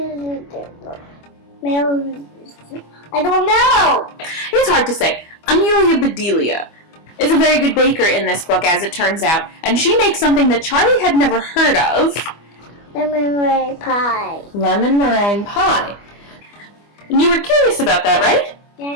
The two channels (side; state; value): right; late; 25 ms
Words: don't know. It's hard to say. Amelia Bedelia is a very good baker in this book, as it turns out, and she makes something that Charlie had never heard of. Lemon meringue pie. Lemon meringue pie. And you were curious about that, right?